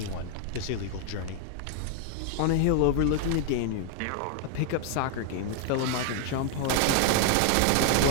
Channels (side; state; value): both; different; correlation 0.00